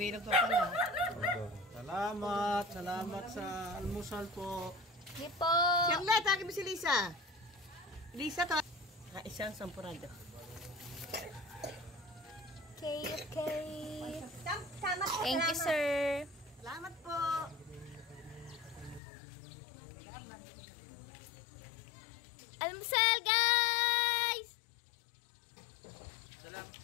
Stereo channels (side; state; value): right; drops out; at 19.0 s